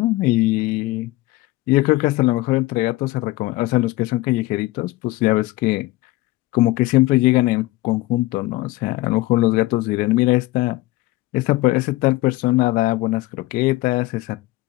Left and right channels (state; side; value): quieter; right; 18.8 dB